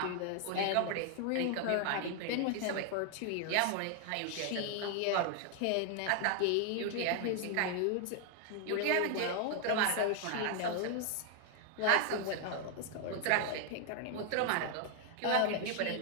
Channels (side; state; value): both; different; correlation 0.00